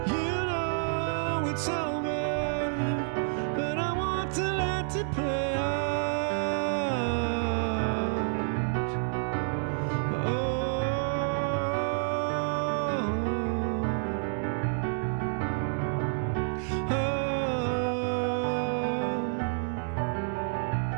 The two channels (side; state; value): left; silent; digital silence